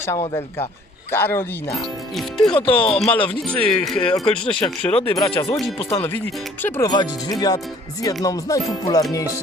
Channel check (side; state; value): both; normal; correlation 0.56